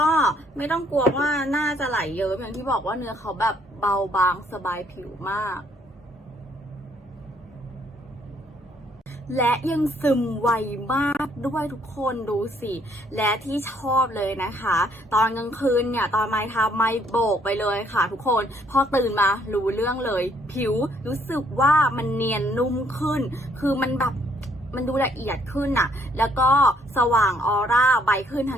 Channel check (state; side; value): normal; both; correlation 0.66